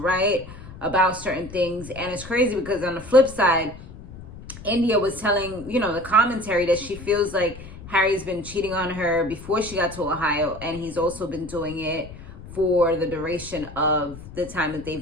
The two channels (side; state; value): left; noise; rumble, 15 dB below the sound